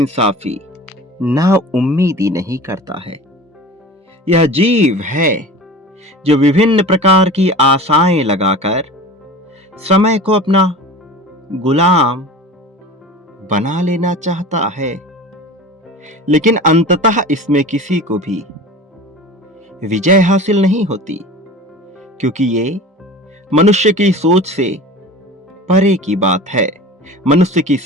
ना उम्मीदी नहीं करता है। यह जीव है जो विभिन्न प्रकार की आशाएं लगाकर समय को अपना गुलाम बना लेना चाहता है, लेकिन अंततः इसमें किसी को भी विजय हासिल नहीं होती, क्योंकि ये मनुष्य की सोच से परे की बात है, मनुष्य की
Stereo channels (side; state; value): both; normal; correlation 0.37